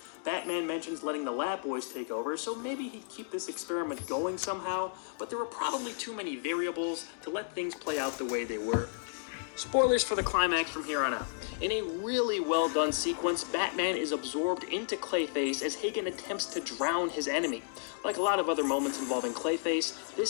Batman mentions letting the lab boys take over, so maybe he'd keep this experiment going somehow, but there were probably too many variables to let things play out the way they were. Spoilers for the climax from here on out. In a really well done sequence, Batman is absorbed into Clayface as Hagen attempts to drown his enemy. Like a lot of other moments involving Clayface,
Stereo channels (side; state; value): right; silent; digital silence